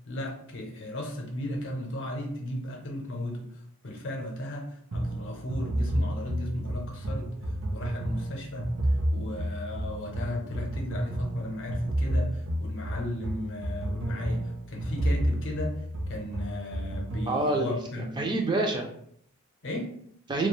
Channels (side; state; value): both; normal; correlation 0.75